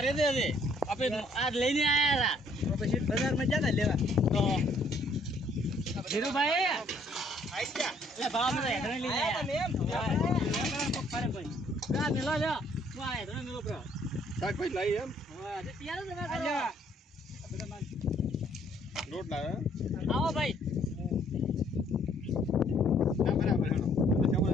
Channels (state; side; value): normal; both; correlation 0.64